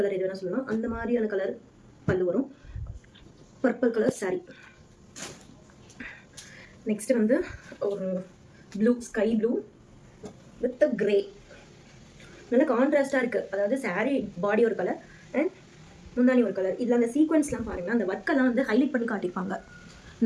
எது வேணால் சொல்லலாம். அந்த மாதிரியான கலர் பல்லு வரும். Purple colour sorry. நெக்ஸ்ட் வந்து ஒரு blue, sky blue with grey. நல்ல கான்ட்ராஸ்டாக இருக்குது. அதாவது சாரீ பாடி ஒரு கலர் அண்ட் முந்தானி ஒரு கலர். இதில் அந்த சீக்வன்ஸ்லாம் பாருங்கள், அந்த ஒர்க்கெல்லாம் வந்து ஹைலைட் பண்ணி காட்டியிருப்பாங்க.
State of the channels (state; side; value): identical; both; correlation 1.00